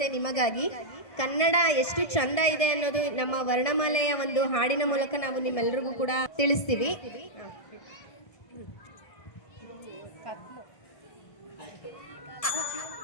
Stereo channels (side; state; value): right; late; 1.6 ms